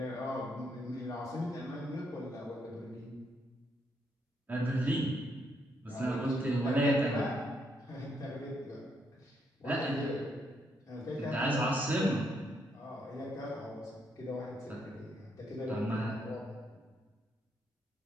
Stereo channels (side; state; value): both; normal; correlation 0.75